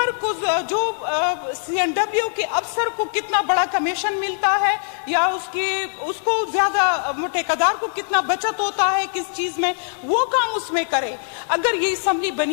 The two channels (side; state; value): right; silent; digital silence